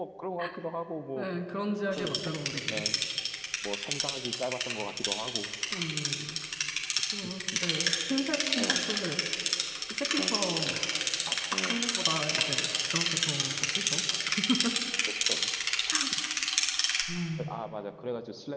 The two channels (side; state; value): both; identical; correlation 1.00